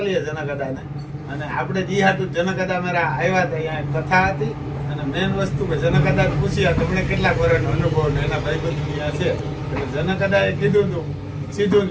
જનકદાને. અને આપણે જી હાટું જનકદા મારા આવ્યા હતા, અહીંયા કથા હતી અને મેન વસ્તુ કે જનકદાદાને પૂછ્યા તમને કેટલા વર્ષનો અનુભવ ને એના ભાઈબંધ ત્યાં છે એટલે જનકદાદાએ કીધું હતું સીધું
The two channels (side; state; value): both; identical; correlation 1.00